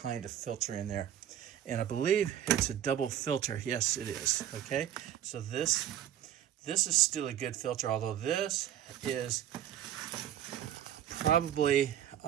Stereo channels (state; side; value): quieter; left; 10.9 dB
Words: of filter in there. And I believe it's a double filter. Yes, it is. Okay, so this is still a good filter, although this is probably